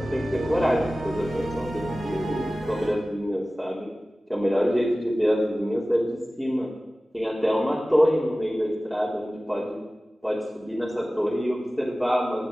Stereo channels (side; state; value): both; normal; correlation 0.97